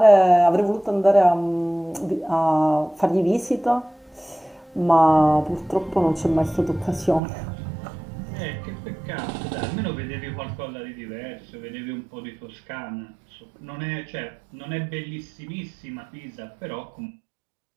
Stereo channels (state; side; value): drops out; left; at 7.2 s